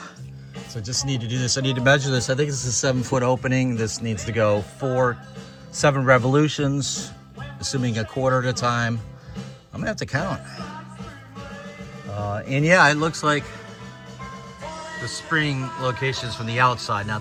So I just need to do this. I need to measure this. I think this is a 7-foot opening. This needs to go 7 revolutions, assuming a quarter at a time. I'm gonna have to count. And yeah, it looks like the spring location's from the outside,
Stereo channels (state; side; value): identical; both; correlation 1.00